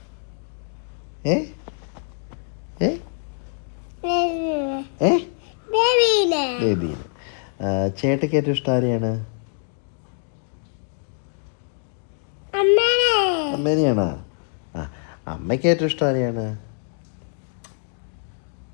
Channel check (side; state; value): right; silent; 62 dB below the other